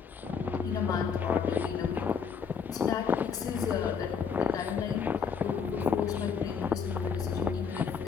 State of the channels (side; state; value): right; quieter; 6.4 dB